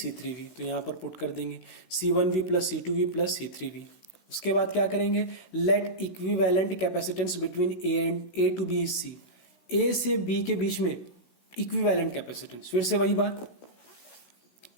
तो यहां पर पुट कर देंगे C1V plus C2V plus C3V। उसके बाद क्या करेंगे, let equivalent capacitance between A to B is C, A से B के बीच में इक्विवेलेंट कैपेसिटेंस, फिर से वही बात,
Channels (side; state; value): right; late; 16 ms